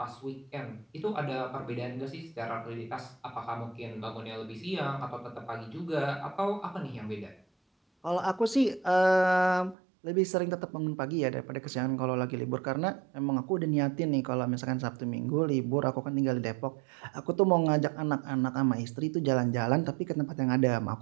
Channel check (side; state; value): left; drops out; at 9.8 s